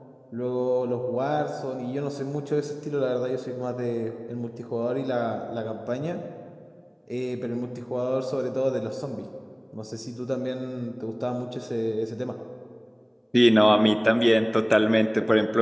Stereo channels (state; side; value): identical; both; correlation 1.00